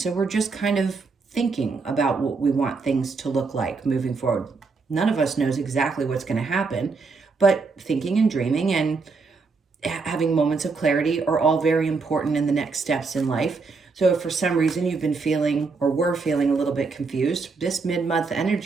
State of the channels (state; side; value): quieter; left; 4.4 dB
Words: So we're just kind of thinking about what we want things to look like moving forward. None of us knows exactly what's going to happen, but thinking and dreaming and having moments of clarity are all very important in the next steps in life. So if for some reason you've been feeling or were feeling a little bit confused, this mid-month